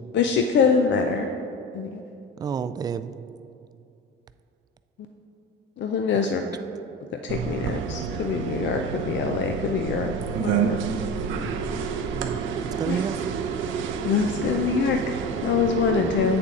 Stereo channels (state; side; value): normal; both; correlation 0.28